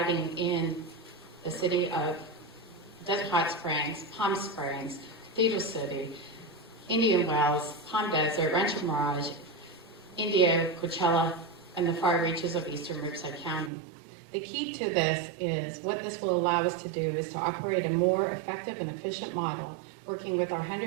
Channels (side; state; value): left; drops out; at 13.7 s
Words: in the city of Desert Hot Springs, Palm Springs, Cathedral City, Indian Wells, Palm Desert, Rancho Mirage, India, Coachella, and the far reaches of eastern Riverside County. The key to this is what this will allow us to do is to operate a more effective and efficient model working with our